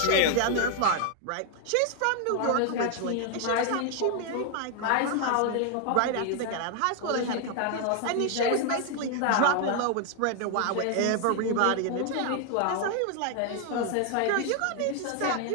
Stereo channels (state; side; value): different; both; correlation 0.00